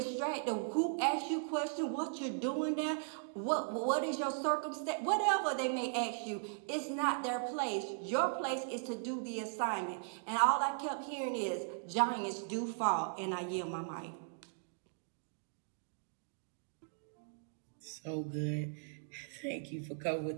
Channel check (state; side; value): silent; left; digital silence